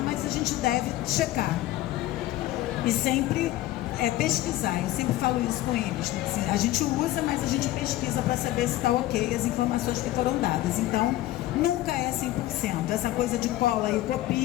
mas a gente deve checar. E sempre pesquisar, eu sempre falo isso com eles. Assim, a gente usa, mas a gente pesquisa para saber se está ok as informações que foram dadas. Então, nunca é 100%. Essa coisa de cola e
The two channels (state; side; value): quieter; right; 15.5 dB